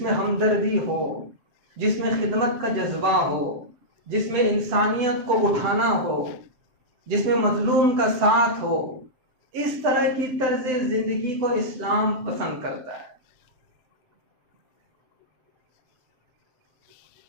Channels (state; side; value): late; left; 7.9 ms